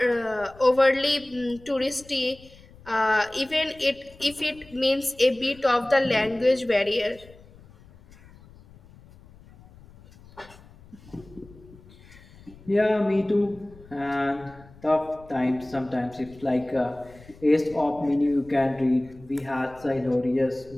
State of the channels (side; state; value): left; noise; rumble, 23 dB below the sound